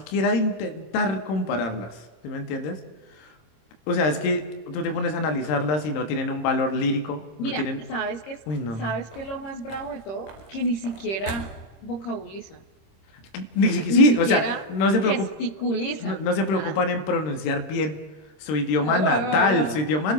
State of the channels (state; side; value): late; right; 26 ms